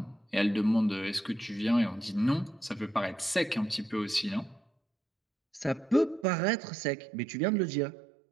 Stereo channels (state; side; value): drops out; left; at 6.2 s